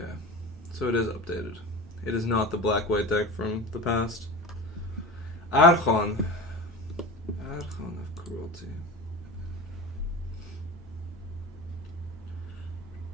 So it is updated. It is not the black-white deck from the past. Archon. Archon of Cruelty.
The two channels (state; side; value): normal; both; correlation 0.31